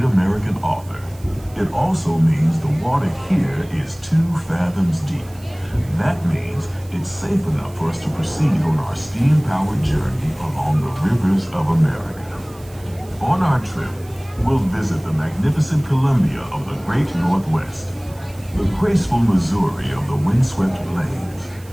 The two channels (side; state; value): right; noise; hiss, 24 dB below the sound